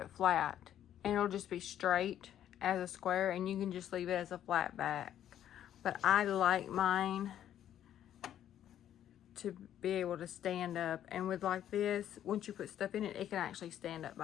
flat and it'll just be straight as a square, and you can just leave it as a flat back. But I like mine to be able to stand up, and with like this, once you put stuff in it, it can actually stand up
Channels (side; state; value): right; quieter; 10.9 dB